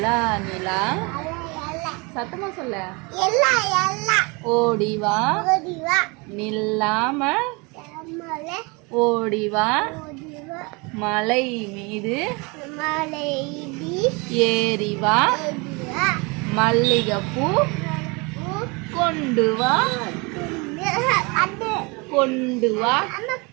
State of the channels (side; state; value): left; quieter; 28.4 dB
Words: நிலா சத்தமா சொல்ல. எல்லா எல்லா ஓடிவா ஓடிவா நில்லாம மலை ஓடிவா ஓடிவா மலை மீது மலை ஏறிவா ஏறிவா மல்லிகைப்பூ கொண்டு வா கண்டு கொண்டு வா அம்மா